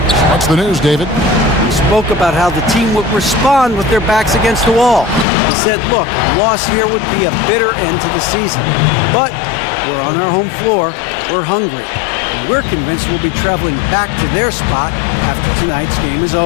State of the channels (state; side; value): drops out; right; at 5.2 s